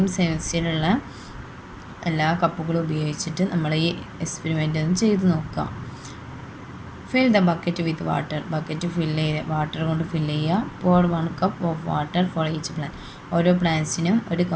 സൈസിലുള്ള എല്ലാ കപ്പുകളും ഉപയോഗിച്ചിട്ട് നമ്മൾ ഈ എക്സ്പെരിമെൻ്റ് ഒന്ന് ചെയ്ത് നോക്കുക. Fill the bucket with water. Bucket water കൊണ്ട് ഫില്ല് ചെയ്യുക. pour 1 cup of water for each plant. ഓരോ പ്ലാന്റ്സിനും ഒരു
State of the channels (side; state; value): both; identical; correlation 1.00